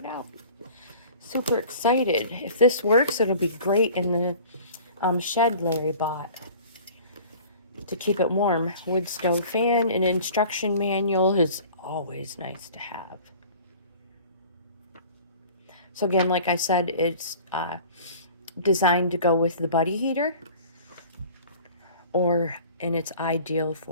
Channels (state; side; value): inverted; both; correlation -0.45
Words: out. Super excited. If this works, it'll be great in the shed Larry bought to keep it warm. Wood stove fan. An instruction manual is always nice to have. So again, like I said, it's designed to go with the buddy heater, and it's ideal